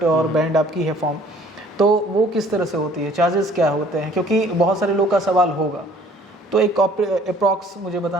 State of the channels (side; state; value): both; normal; correlation 0.55